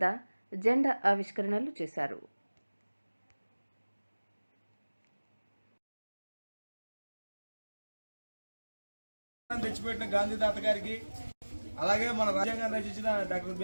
జెండా ఆవిష్కరణలు చేశారు. తెచ్చిపెట్టిన గాంధీ తాత గారికి, అలాగే మన రాజ్యాంగాన్ని రచించిన డాక్టర్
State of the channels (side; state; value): both; inverted; correlation -1.00